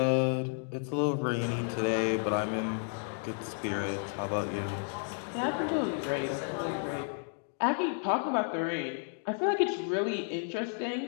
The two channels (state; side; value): silent; right; 56 dB below the other